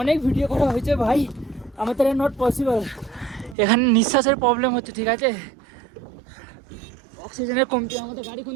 অনেক ভিডিও করা হয়েছে ভাই, আমার দ্বারা নট পসিবল। এখানে নিঃশ্বাসের প্রবলেম হচ্ছে, ঠিক আছে? অক্সিজেনের কমতি। আমাদের গাড়ি কোন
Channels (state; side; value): drops out; left; at 3.6 s